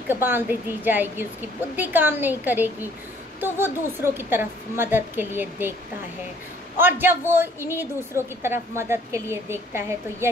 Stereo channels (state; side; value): normal; both; correlation 0.59